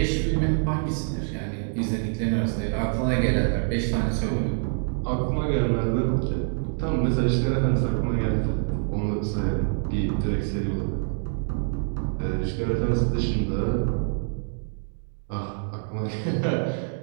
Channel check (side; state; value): left; silent; 61 dB below the other